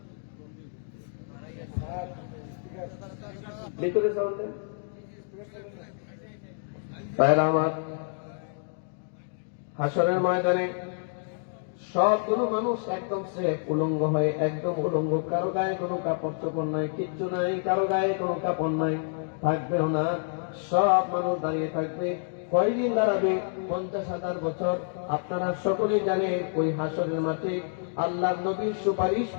ভিতরে সাউন্ড দেন ভাইরা আমার। হাসরের ময়দানে সবগুলো মানুষ একদম সেফ, উলঙ্গ হয়ে, একদম উলঙ্গ, কারো গায়ে কোনো কাপড় চোপড় নাই, কিচ্ছু নাই, কারো গায়ে কোনো কাপড় নাই, থাকবেও না। সব মানুষ দাঁড়িয়ে থাকবে। কয়দিন দাঁড়াবে? 50,000 বছর। আপনারা সকলেই জানেন ওই হাসরের মাঠে আল্লাহর নবীর সুপারিশ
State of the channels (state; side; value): silent; right; digital silence